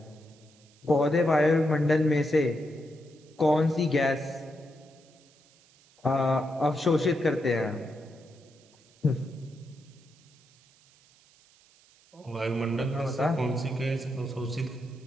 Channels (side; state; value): right; noise; hiss, 29 dB below the sound